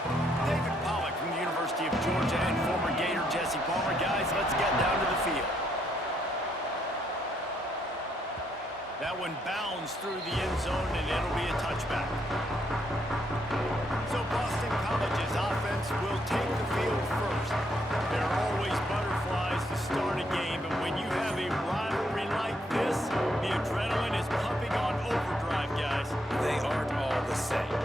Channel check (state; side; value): normal; both; correlation 0.74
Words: David Pollock from the University of Georgia and former Gator Jesse Palmer. Guys, let's get down to the field. That one bounds through the end zone, and it'll be a touchback. So Boston College's offense will take the field first. There are always butterflies to start a game, and when you have a rivalry like this, the adrenaline is pumping on overdrive, guys. They aren't all the same.